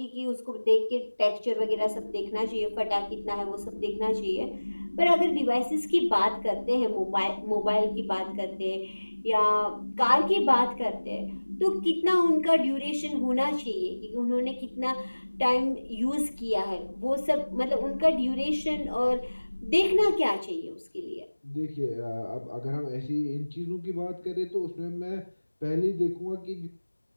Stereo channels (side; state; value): both; inverted; correlation -1.00